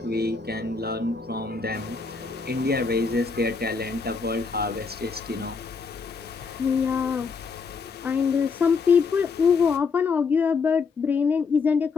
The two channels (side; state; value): right; quieter; 5.0 dB